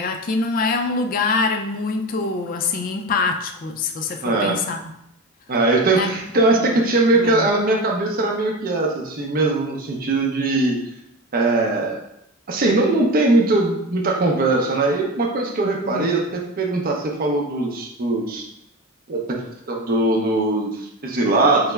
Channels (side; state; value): both; normal; correlation 0.25